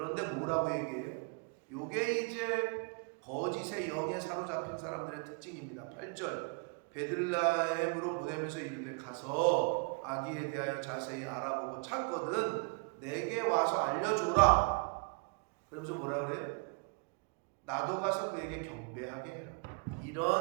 뭐라고 얘기해요? 요게 이제 거짓의 영에 사로잡힌 사람들의 특징입니다. 8절 베들레헴으로 보내면서 이르되 가서 아기에 대하여 자세히 알아보고 찾거든 내게 와서 알려줘라. 그러면서 뭐라 그래? 나도 가서 그에게 경배하게 해라.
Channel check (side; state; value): left; quieter; 35.1 dB